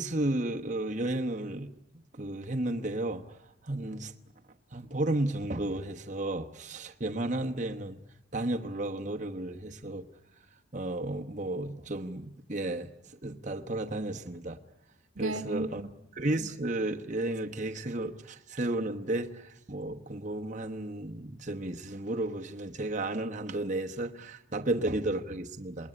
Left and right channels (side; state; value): both; normal; correlation 0.51